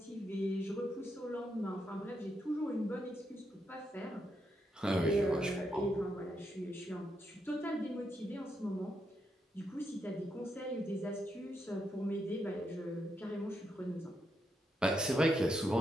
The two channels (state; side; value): normal; both; correlation 0.81